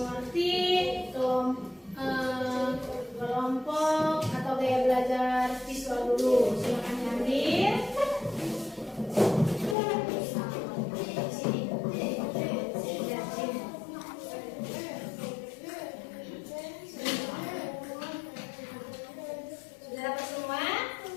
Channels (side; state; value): right; drops out; at 9.8 s